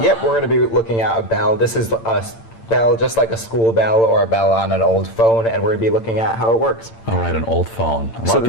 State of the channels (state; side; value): late; right; 8.8 ms